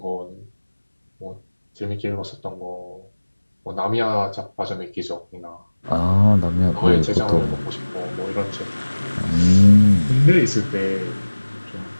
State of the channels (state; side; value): inverted; both; correlation -1.00